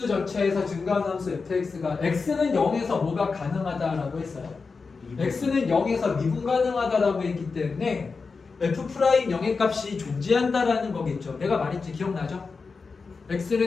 전체에서 증가한 함수 fx가 x는 0에서 뭐가 가능하다라고 했어요. x는 0에서 미분 가능하다라고 했기 때문에 f' 영의 값이 존재한다라는 거겠죠. 내가 말했지 기억나죠?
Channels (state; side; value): quieter; right; 4.6 dB